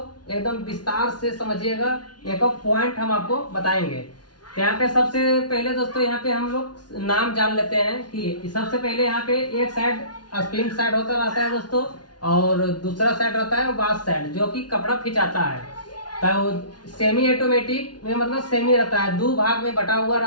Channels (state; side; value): late; right; 0.70 ms